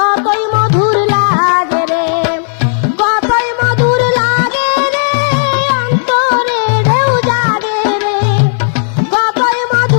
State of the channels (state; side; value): silent; right; digital silence